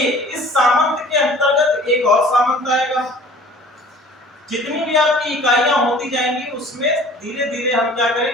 इस सामंत के अंतर्गत एक और सामंत आएगा। जितनी भी आपकी इकाइयां होती जाएंगी उसमें धीरे धीरे हम क्या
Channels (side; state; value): both; normal; correlation 0.48